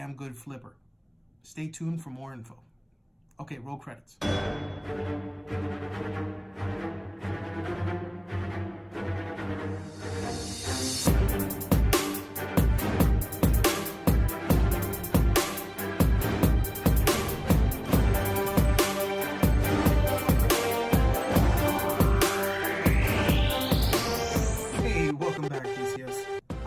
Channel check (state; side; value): identical; both; correlation 1.00